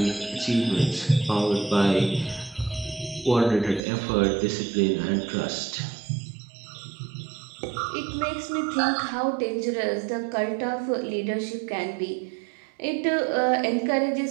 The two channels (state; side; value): drops out; left; at 3.8 s